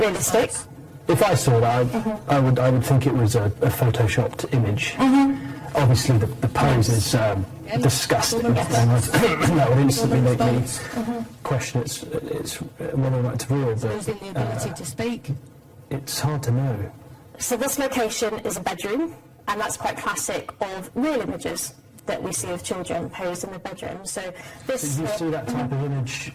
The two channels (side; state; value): both; identical; correlation 1.00